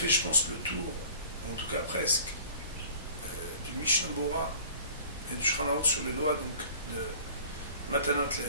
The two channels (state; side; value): inverted; both; correlation -0.47